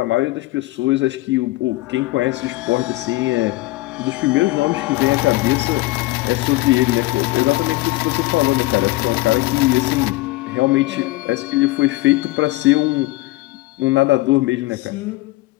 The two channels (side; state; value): right; quieter; 19.6 dB